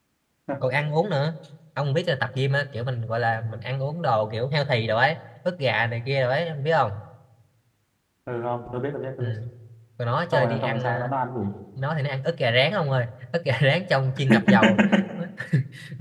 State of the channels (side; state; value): both; identical; correlation 1.00